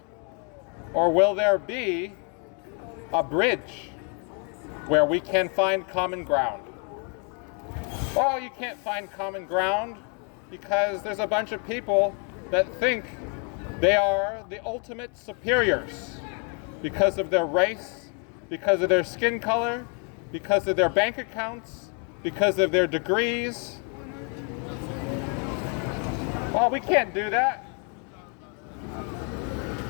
Or will there be a bridge where we can find common ground? Oh, you can't find common ground because there's a bunch of people that think they are the ultimate superiors because of their race, because of their skin color, because of their bank accounts, because of their degrees. Well, we can't do that.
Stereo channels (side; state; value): right; quieter; 38.7 dB